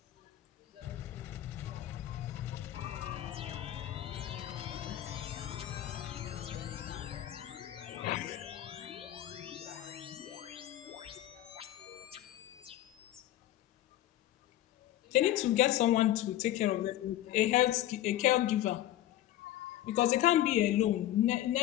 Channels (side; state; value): right; quieter; 13.4 dB